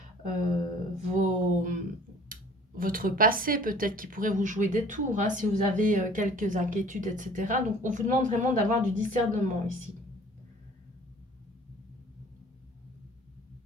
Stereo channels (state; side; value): normal; both; correlation 0.50